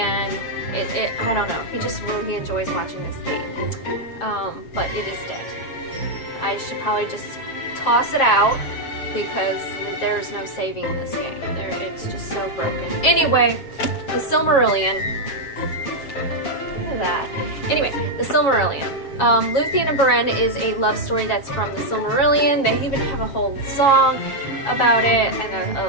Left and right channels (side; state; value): right; late; 7.4 ms